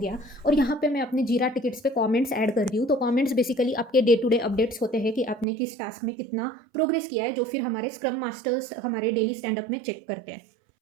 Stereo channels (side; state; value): left; drops out; at 5.5 s